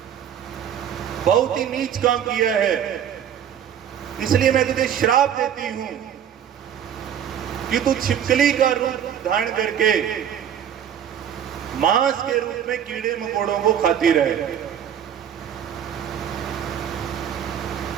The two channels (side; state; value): left; quieter; 9.2 dB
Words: बहुत ही नीच काम किया है, इसलिए मैं तुझे श्राप देती हूं कि तू छिपकली का रूप धारण करके मांस के रूप में कीड़े मकोड़ों को खाती रहे।